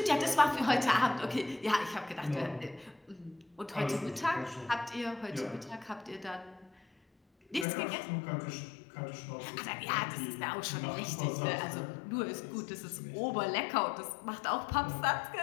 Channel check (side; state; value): right; drops out; at 7.7 s